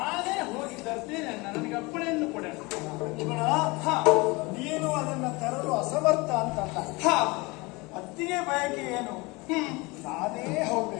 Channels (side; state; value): right; quieter; 25.1 dB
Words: ಹೋಗಿ ತರ್ತೇನೆ ಅಣ್ಣ. ನನಗೆ ಅಪ್ಪಣೆಯನ್ನು ಕೊಡೋಣ. ಲಕ್ಷ್ಮಣ, ನೀನು ಅದನ್ನ ತರಲು ಅಸಮರ್ಥ ಅಂತಲ್ಲ. ಅತ್ತಿಗೆ ಬಯಕೆ ಏನು? ನಾನೇ